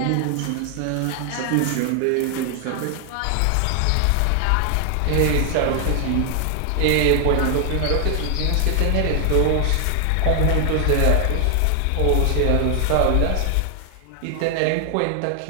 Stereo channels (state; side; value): different; both; correlation 0.00